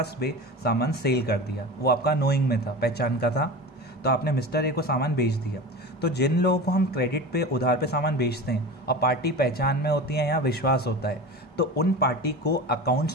पे सामान सेल कर दिया। वो आपका नोइंग में था, पहचान का था, तो आपने मिस्टर ए को सामान बेच दिया। तो जिन लोगों को हम क्रेडिट पे, उधार पे सामान बेचते हैं और पार्टी पहचान में होती है या विश्वास होता है, तो उन पार्टी को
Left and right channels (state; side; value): normal; both; correlation 0.31